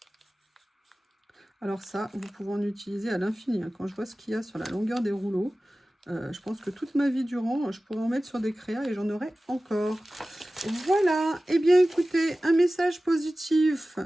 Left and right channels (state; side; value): normal; both; correlation 0.96